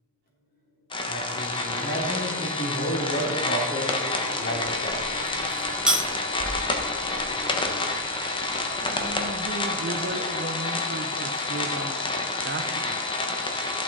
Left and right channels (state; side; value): normal; both; correlation -0.03